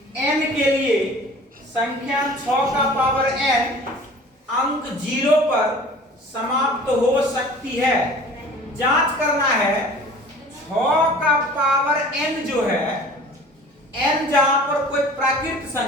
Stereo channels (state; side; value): normal; both; correlation 0.45